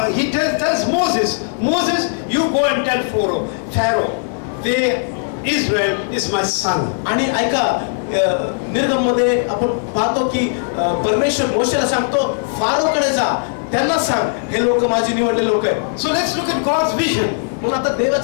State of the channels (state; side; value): silent; right; 67 dB below the other